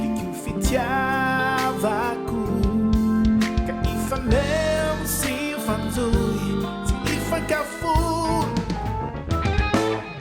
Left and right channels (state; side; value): identical; both; correlation 1.00